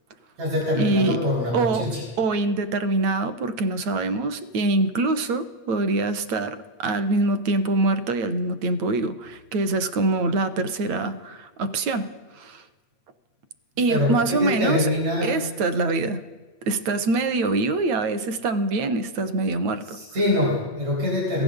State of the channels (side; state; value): left; late; 8.6 ms